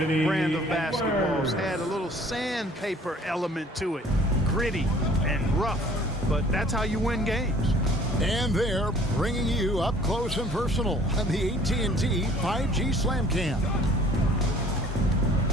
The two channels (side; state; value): both; normal; correlation 0.53